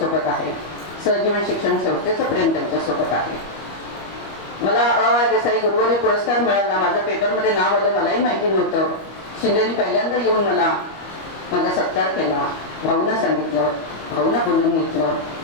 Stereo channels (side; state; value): right; late; 25 ms